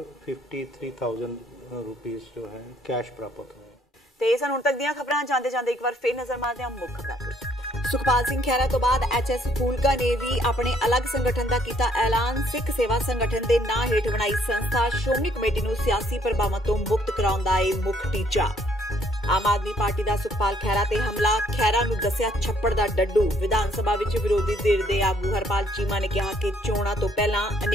रुपीस जो है कैश प्राप्त हुए। ਤੇ ਸਨ ਹੁਣ ਤੱਕ ਦੀਆਂ ਖਬਰਾਂ ਜਾਂਦੇ ਜਾਂਦੇ ਇੱਕ ਵਾਰ ਫੇਰ ਨਜ਼ਰ ਮਾਰਦੇ ਹਾਂ ਮੁੱਖ ਖਬਰਾਂ ਤੇ। ਸੁਖਪਾਲ ਸਿੰਘ ਖਹਿਰਾ ਤੋਂ ਬਾਅਦ ਐਚਐਸ ਫੂਲਕਾ ਨੇ ਵੀ ਆਪਣੇ ਅਲੱਗ ਸੰਗਠਨ ਦਾ ਕੀਤਾ ਐਲਾਨ। ਸਿੱਖ ਸੇਵਾ ਸੰਗਠਨ ਦੇ ਨਾਂ ਹੇਠ ਬਣਾਈ ਸੰਸਥਾ ਸ਼੍ਰੋਮਣੀ ਕਮੇਟੀ ਨੂੰ ਸਿਆਸੀ ਪ੍ਰਭਾਵਾਂ ਤੋਂ ਮੁਕਤ ਕਰਾਉਣ ਦਾ ਇਹ ਮੁੱਖ ਟੀਚਾ। ਆਮ ਆਦਮੀ ਪਾਰਟੀ ਦਾ ਸੁਖਪਾਲ ਖਹਿਰਾ ਤੇ ਹਮਲਾ, ਖਹਿਰਾ ਨੂੰ ਦੱਸਿਆ ਛੱਪੜ ਦਾ ਡੱਡੂ। ਵਿਧਾਨ ਸਭਾ ਵਿੱਚ ਵਿਰੋਧੀ ਧਿਰ ਦੇ ਆਗੂ ਹਰਪਾਲ ਚੀਮਾ ਨੇ ਕਿਹਾ ਕਿ ਚੋਣਾਂ ਤੋਂ ਪਹਿਲਾਂ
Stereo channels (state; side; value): normal; both; correlation 0.65